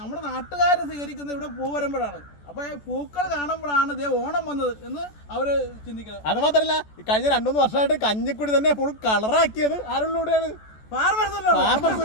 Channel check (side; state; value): right; late; 14 ms